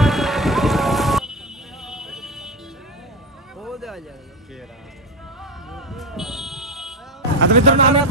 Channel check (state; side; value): normal; both; correlation 0.15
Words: आता मित्रांनो आम्ही